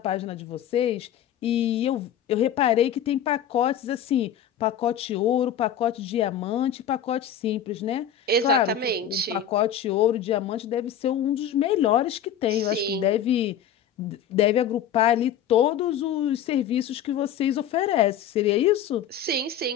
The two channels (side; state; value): right; quieter; 9.0 dB